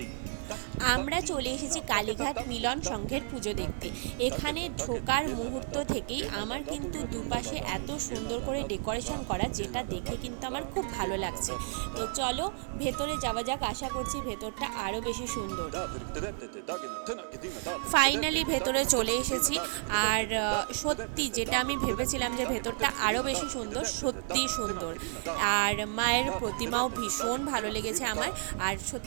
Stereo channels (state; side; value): silent; left; 57 dB below the other